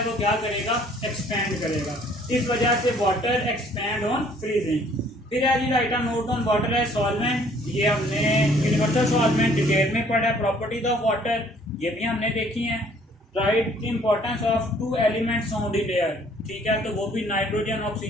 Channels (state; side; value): normal; both; correlation 0.59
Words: वो क्या करेगा, एक्सपैंड करेगा। इस वजह से वाटर एक्सपैंड ऑन फ्रीजिंग। फिर है जी write a note on water है सॉल्वेंट। ये हमने यूनिवर्सल सॉल्वेंट डिटेल में पढ़ा है। प्रॉपर्टीज ऑफ वाटर ये भी हमने देखी हैं। Right the importance of 2 elements found in air. ठीक है, तो वो भी नाइट्रोजन